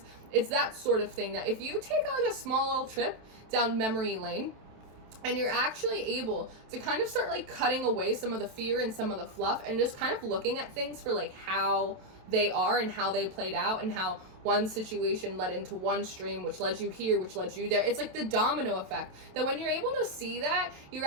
It's that sort of thing that if you take like a small little trip down memory lane and you're actually able to kind of start like cutting away some of the fear and some of the fluff and just kind of looking at things for like how they are and how they played out and how one situation led into one stream, which led you here, which led you there. It's like the domino effect, that when you're able to see that, you're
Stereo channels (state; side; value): late; left; 27 ms